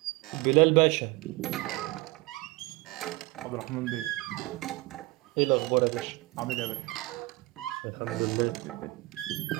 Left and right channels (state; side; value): quieter; left; 21.6 dB